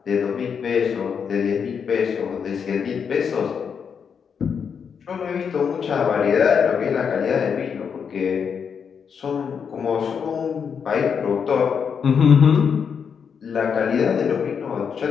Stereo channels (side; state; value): right; quieter; 6.8 dB